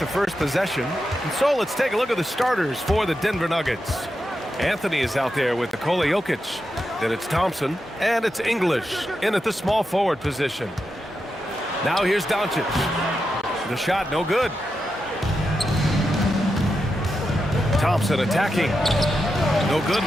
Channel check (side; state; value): both; normal; correlation 0.87